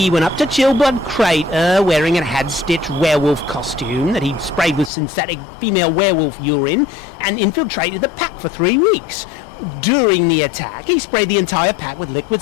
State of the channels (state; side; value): drops out; right; at 4.9 s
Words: went up to Chillblood Crater wearing a had-stitched werewolf costume that he'd sprayed with synthetic female werewolf urine and infiltrated the pack for 3 weeks. During the attack, he sprayed the entire pack with liquid